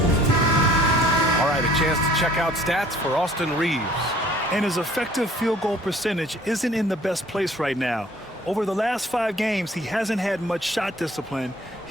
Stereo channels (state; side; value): normal; both; correlation 0.54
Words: All right, a chance to check out stats for Austin Reaves. And his effective field goal percentage isn't in the best place right now. Over the last 5 games, he hasn't had much shot discipline.